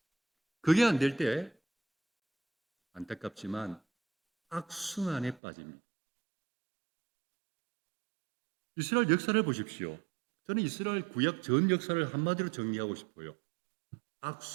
그게 안 될 때 안타깝지만 악순환에 빠집니다. 이스라엘 역사를 보십시오. 저는 이스라엘 구약 전 역사를 한마디로 정리하고 싶어요.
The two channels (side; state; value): left; drops out; at 5.4 s